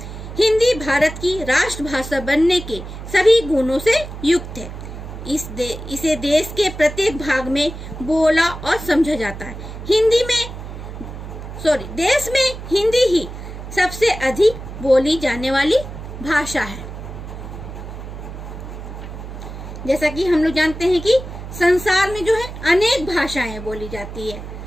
हिंदी भारत की राष्ट्रभाषा बनने के सभी गुणों से युक्त है। इसे देश के प्रत्येक भाग में बोला और समझा जाता है। देश में हिंदी ही सबसे अधिक बोली जाने वाली भाषा है। जैसा कि हम लोग जानते हैं कि संसार में जो है अनेक भाषाएं बोली जाती है।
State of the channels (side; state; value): right; noise; hum, 10 dB below the sound